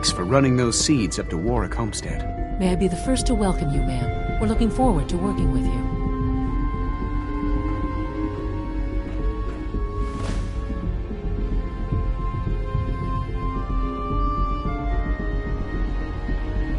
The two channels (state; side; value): identical; both; correlation 1.00